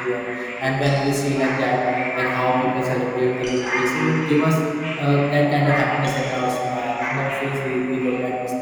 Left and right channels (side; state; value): both; identical; correlation 1.00